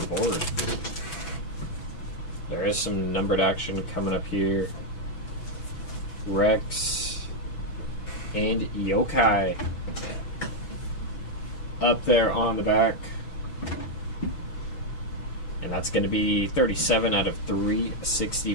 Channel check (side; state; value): right; late; 6.1 ms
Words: board. There is some numbered action coming up here. Rex and Yokai up there on the back. And that's going to be 37 out of